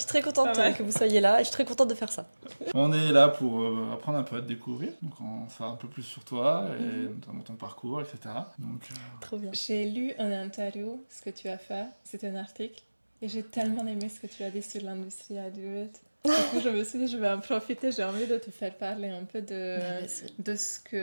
très contente Pas mal. que vous soyez là et je suis très contente de faire ça. On est là pour apprendre un peu à te découvrir. Donc on va faire un peu plus sur toi, et notamment ton parcours, etc. Donc, Trop bien. J'ai lu une interview, ce que tu as fait, c'est un article, et j'ai tellement aimé ce que tu as dit sur l'industrie adulte. Du coup, je me suis dit, je vais en profiter, j'ai envie de te faire parler un peu de ce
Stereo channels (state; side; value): inverted; both; correlation -1.00